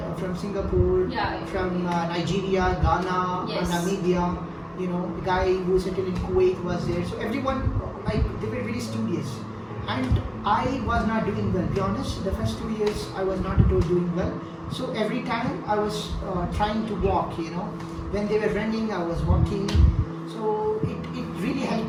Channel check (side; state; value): both; identical; correlation 1.00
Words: from Singapore, from Nigeria, Ghana, Namibia. The guy who settled in Kuwait was there. So everyone, they were very studious. and I was not doing well. Be honest, the first 2 years I was not at all doing well. So every time I was trying to walk, when they were running, I was walking. So it really